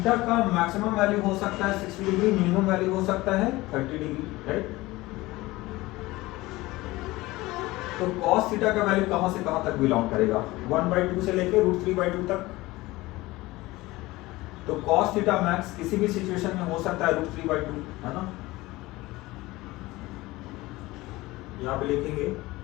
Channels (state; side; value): quieter; right; 19.8 dB